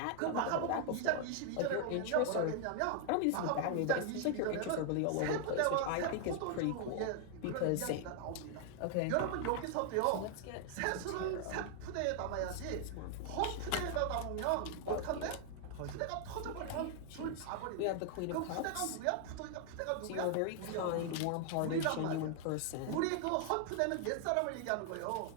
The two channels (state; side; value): different; both; correlation 0.00